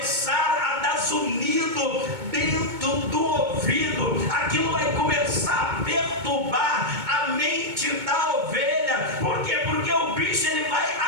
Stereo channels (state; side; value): late; left; 2.2 ms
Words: a dar zunido dentro do ouvido, aquilo vai começar a perturbar a mente da ovelha. Por quê? Porque o bicho ele vai